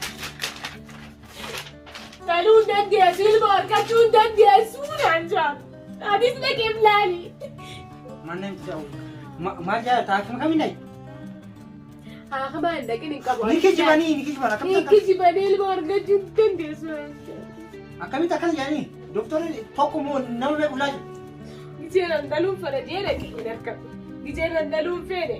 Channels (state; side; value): identical; both; correlation 1.00